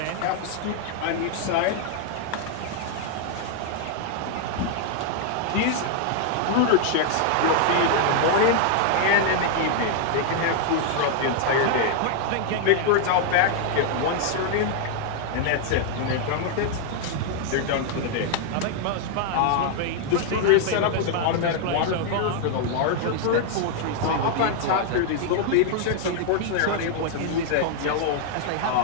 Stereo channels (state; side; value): different; both; correlation 0.00